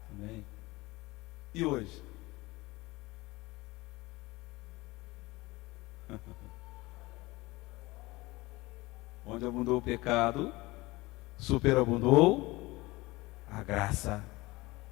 Também. E hoje? Onde abundou o pecado, superabundou a graça.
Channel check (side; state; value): right; quieter; 21.4 dB